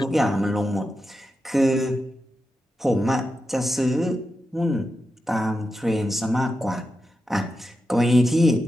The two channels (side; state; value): both; normal; correlation 0.89